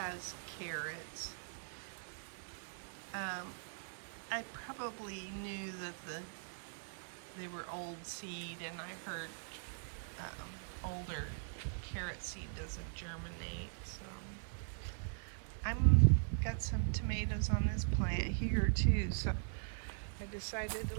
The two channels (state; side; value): silent; left; digital silence